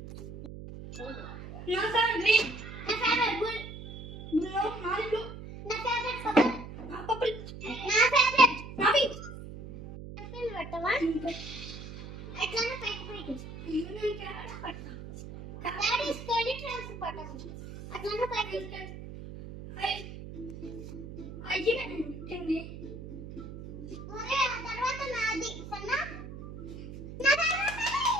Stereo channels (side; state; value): right; noise; hum, 11 dB below the sound